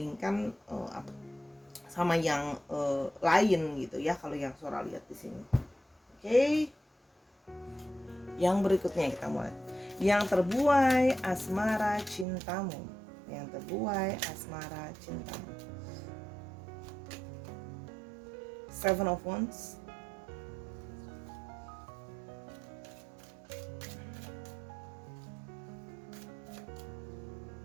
sama yang lain gitu ya, kalau yang Sora lihat di sini. Oke. Yang berikutnya kita mulai. Yang terbuai asmara cintamu. Yang terbuai asmara cintamu. Seven of Wands.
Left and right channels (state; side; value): drops out; left; at 12.2 s